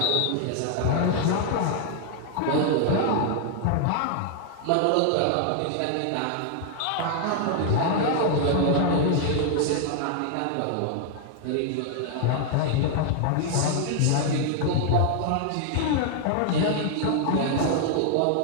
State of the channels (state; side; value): different; both; correlation 0.00